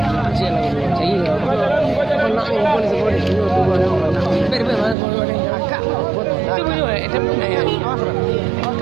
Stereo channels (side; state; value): left; drops out; at 5.0 s